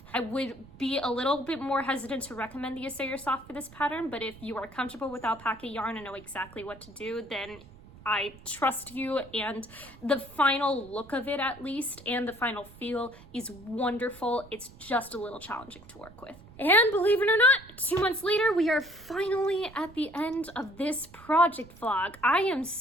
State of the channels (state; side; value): noise; right; rumble, 21 dB below the sound